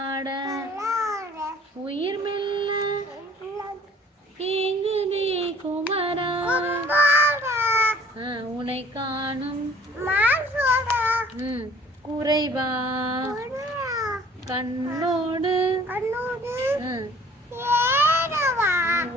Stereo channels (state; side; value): normal; both; correlation 0.53